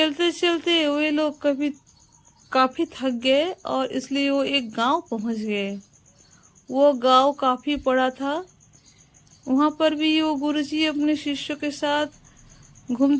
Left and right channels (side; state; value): both; identical; correlation 1.00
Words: चलते वे लोग काफी थक गए और इसलिए वो एक गांव पहुंच गए। वो गांव काफी बड़ा था। वहां पर भी वो गुरुजी अपने शिष्यों के साथ